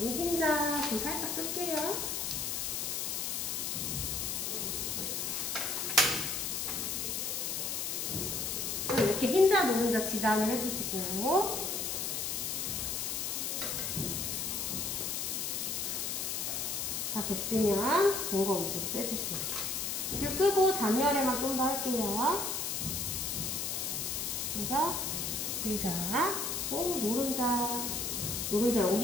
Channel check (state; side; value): noise; left; hiss, 1 dB below the sound